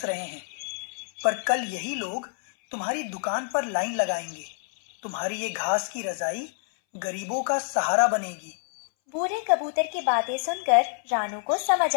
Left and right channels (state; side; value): silent; right; 60 dB below the other